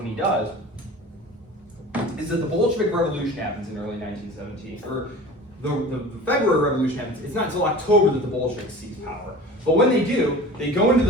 he does, is that the Bolshevik Revolution happens in early 1917, or the February Revolution happens. It's not until October that the Bolsheviks seize power. But when they do, they go into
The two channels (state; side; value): normal; both; correlation 0.38